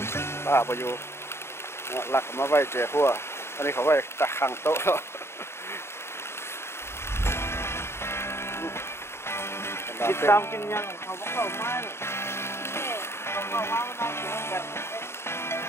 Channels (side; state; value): right; late; 0.12 ms